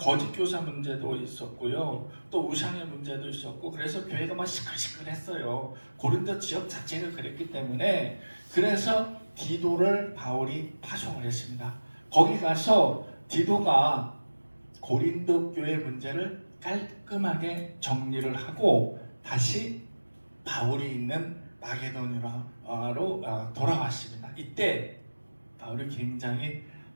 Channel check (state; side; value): inverted; both; correlation -1.00